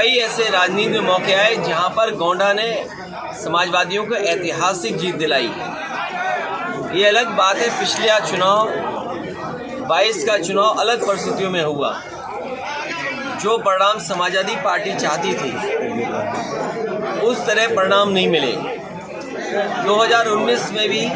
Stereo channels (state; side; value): identical; both; correlation 1.00